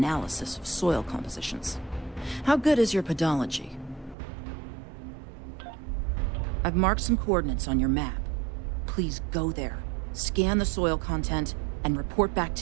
of soil compositions. How good is your podology? I've marked some coordinates on your map. Please go there, scan the soil content, and report back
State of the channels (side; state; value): left; drops out; at 4.2 s